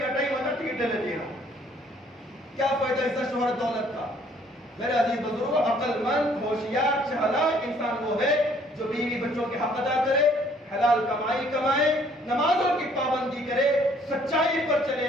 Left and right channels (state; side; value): normal; both; correlation 0.61